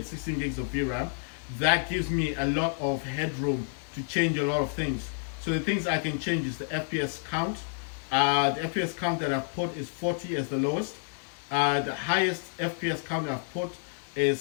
16 gigs of VRAM. That gives me a lot of headroom to change a lot of things. So the things I can change is the FPS count. The FPS count that I've put is 40 as the lowest. The highest FPS count I've put is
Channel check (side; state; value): right; silent; digital silence